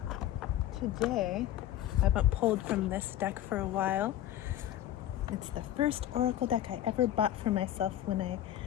today. I haven't pulled from this deck for a while. It's the first oracle deck I ever bought for myself when I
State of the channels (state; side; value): quieter; right; 12.5 dB